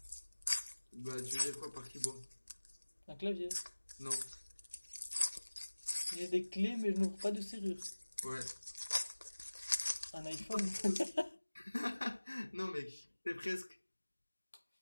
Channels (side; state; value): both; inverted; correlation -1.00